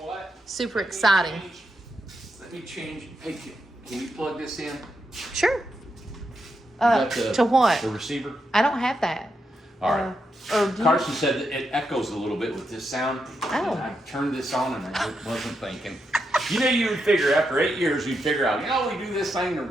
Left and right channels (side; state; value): both; normal; correlation 0.83